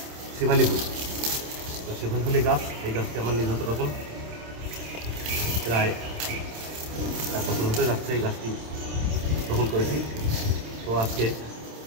শেফালি ফুল। শেফালি ফুলি গাছ, এই গাছটি আমার নিজ হাতে রোপণ, প্রায় 1 বছর হতে যাচ্ছে এই গাছটি রোপণ করেছি। তো আজকে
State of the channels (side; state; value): left; late; 27 ms